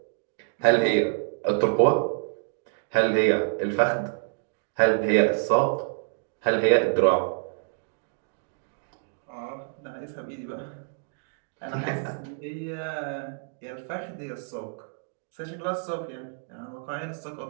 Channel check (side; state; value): left; silent; digital silence